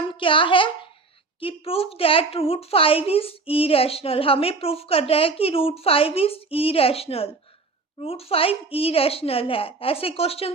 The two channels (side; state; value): left; quieter; 4.0 dB